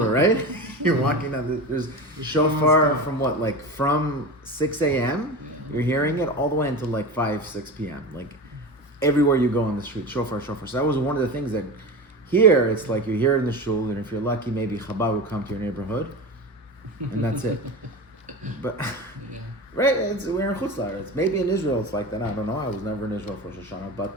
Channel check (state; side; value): normal; both; correlation 0.27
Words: right? You're walking down, there's shofar from from 6 a.m., you're hearing it all the way until 5, 6 p.m. Everywhere you go on the street, shofar. So that was one of the things that here, it's you hear it in the shul, and if you're lucky, maybe Chabad will come to your neighborhood, and that's it. But, right, we're in Chutz La'aretz. Maybe in Israel it's like that, I don't know, I was never in Israel for Rosh Hashanah,